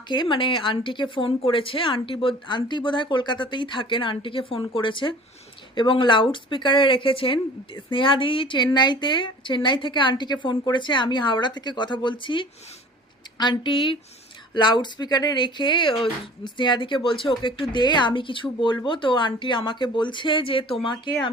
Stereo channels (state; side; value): normal; both; correlation 0.46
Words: মানে আন্টিকে ফোন করেছে। আন্টি বোধহয় কলকাতাতেই থাকেন, আন্টিকে ফোন করেছে এবং লাউড স্পিকারে রেখেছেন। স্নেহা দিদি চেন্নাই থেকে আন্টিকে ফোন করেছে, আমি হাওড়া থেকে কথা বলছি। আন্টি লাউড স্পিকারে রেখে স্নেহাদিকে বলছে ওকে একটু দে, আমি কিছু বলবো। তো আন্টি আমাকে বলছে যে তোমাকে